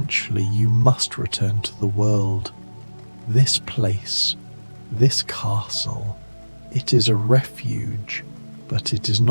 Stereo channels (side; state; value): both; inverted; correlation -1.00